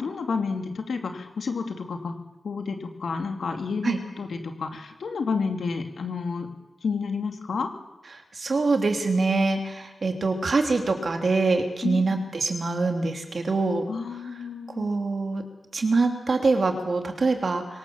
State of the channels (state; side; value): normal; both; correlation 0.90